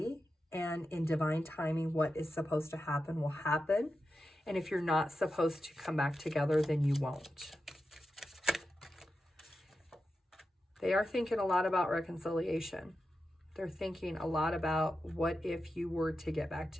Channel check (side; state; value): both; normal; correlation 0.90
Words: And in divine timing, what is supposed to happen will happen. And if you're not supposed to come back together, then you won't. They are thinking a lot about reconciliation. They're thinking a lot about what if you were to get back